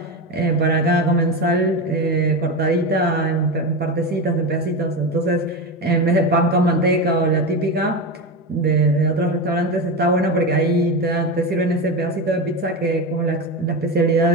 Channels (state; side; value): normal; both; correlation 0.18